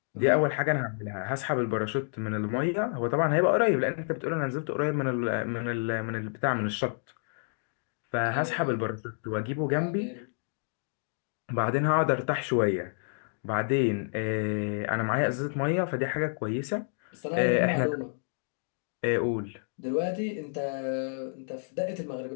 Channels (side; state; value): right; silent; digital silence